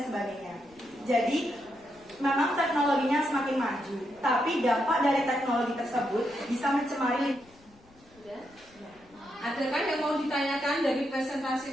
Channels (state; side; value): noise; left; rumble, 28 dB below the sound